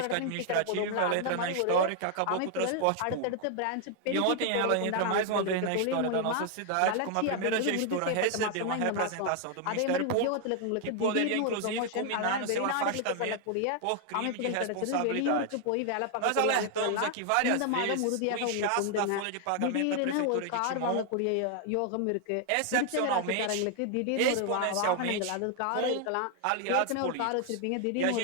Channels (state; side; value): different; both; correlation 0.00